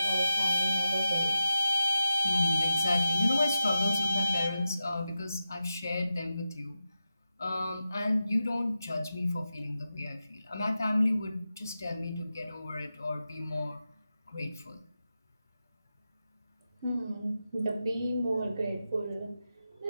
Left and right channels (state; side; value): inverted; both; correlation -0.90